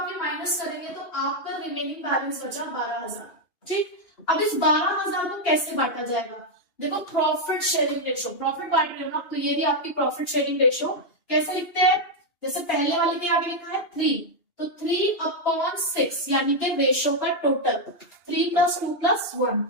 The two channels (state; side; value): late; right; 2.8 ms